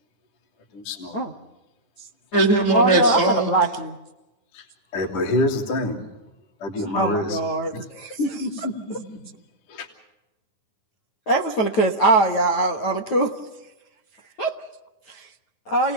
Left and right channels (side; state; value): right; late; 9.3 ms